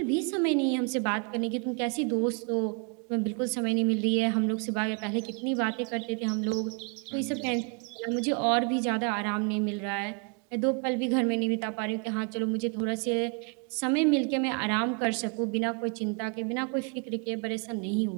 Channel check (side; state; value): left; quieter; 36.0 dB